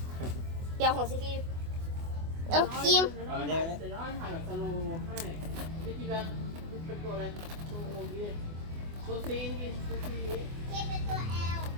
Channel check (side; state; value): left; late; 24 ms